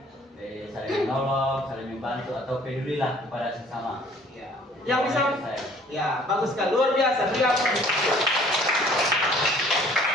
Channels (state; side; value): normal; both; correlation 0.55